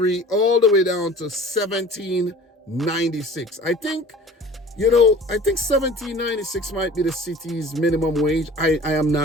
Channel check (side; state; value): both; normal; correlation 0.44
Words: all the way down to $17.96. I think $17.96 might be the city's minimum wage. I am